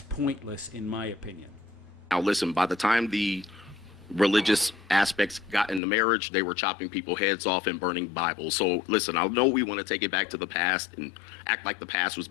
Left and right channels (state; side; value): drops out; right; at 5.8 s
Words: pointless, in my opinion. Now, listen, by the time the religious aspects got into marriage, they were chopping people's heads off and burning Bibles. So listen, I know we want to take it back to the past and act like the past was